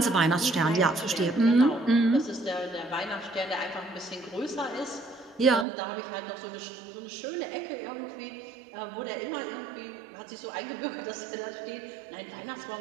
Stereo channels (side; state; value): left; drops out; at 5.7 s